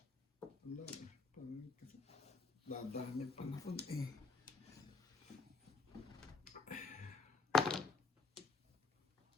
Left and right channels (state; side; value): quieter; right; 4.3 dB